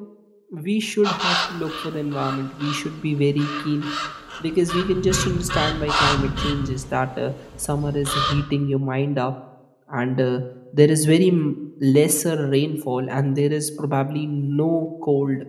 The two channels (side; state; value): both; identical; correlation 1.00